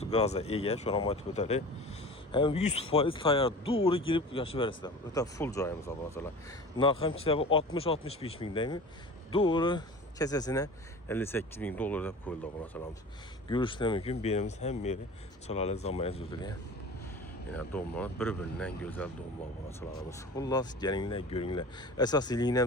gazga ega, shuni ham aytib o'taylik. Hem 100% tayyor, doğru girib yaşayıb verəsizlər. Ötə full joyimiz obunachilar. Narxım kitabı 60-65 mingdəymi? Doğru kesesine 58 bin dolar da koyuldu obunachilarimiz. Görüşlər mümkün, birimiz hem yeri çalalı zamaya züdülüyə. Yine doğumlar bir-birindən gözəl doğumlar obunachilarimiz. Xullas, gəlinlər, görünlər. Əsas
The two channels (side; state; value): both; normal; correlation 0.37